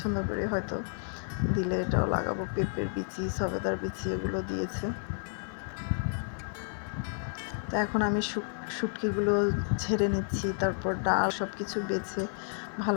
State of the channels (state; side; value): silent; right; 57 dB below the other